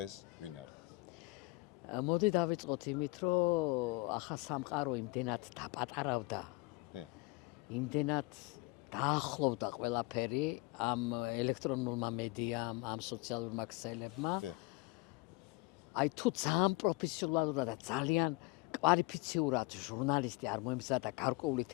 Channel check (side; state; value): right; quieter; 23.6 dB